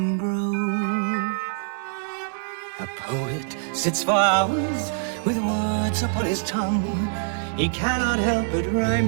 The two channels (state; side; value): silent; left; digital silence